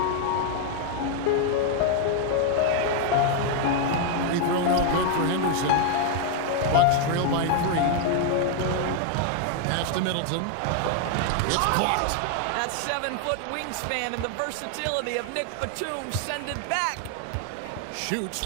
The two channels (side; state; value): both; different; correlation 0.00